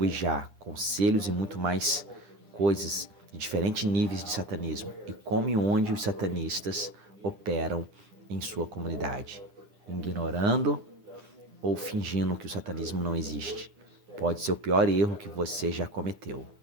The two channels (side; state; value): left; late; 9.9 ms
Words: conselhos e muito mais coisas de diferentes níveis de satanismo e como e onde os satanistas operam em sua comunidade, ignorando ou fingindo que o satanismo não existe. Pode ser o pior erro que você já cometeu.